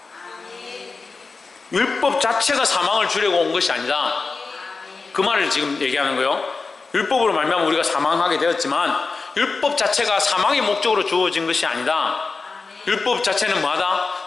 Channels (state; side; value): quieter; right; 4.2 dB